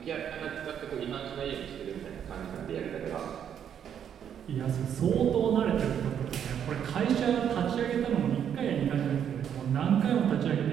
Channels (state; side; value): quieter; left; 8.8 dB